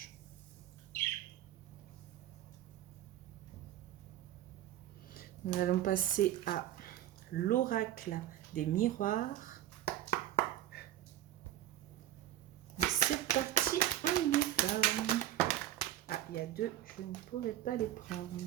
Nous allons passer à l'oracle des miroirs. C'est parti, on y va. Ah, il y a deux, je ne pourrai pas les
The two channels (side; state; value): left; quieter; 12.7 dB